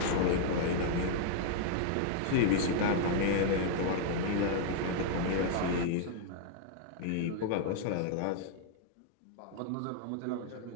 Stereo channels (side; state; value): both; different; correlation -0.01